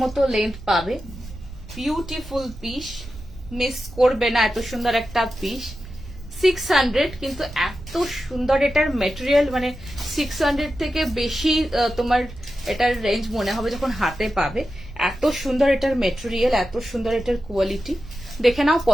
মতো লেন্থ পাবে। বিউটিফুল পিস, মিস করবে না, এত সুন্দর একটা পিস। 600, কিন্তু এত সুন্দর এটার মেটেরিয়াল, মানে 600 থেকে বেশি তোমার এটার রেঞ্জ মনে হবে যখন হাতে পাবে। এত সুন্দর এটার মেটেরিয়াল, এত সুন্দর এটার কোয়ালিটি। দেখে নাও,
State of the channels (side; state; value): right; noise; rumble, 15 dB below the sound